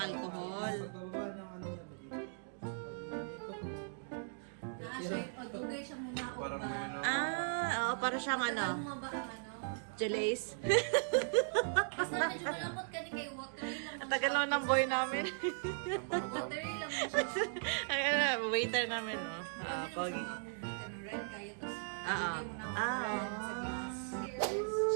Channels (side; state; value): left; silent; digital silence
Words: Pagbaba ng Magdugay siya muna ako ba? Oo, para siyang Tagal mo ba ang Jalace. Basta medyo malapot ka ni kay watery lang. Ang tagal naman ng boy namin. Watery lang mo siya. Waiter namin, oh. Pag red kayo, tapos Oo. dugay mo na ako red sa glass.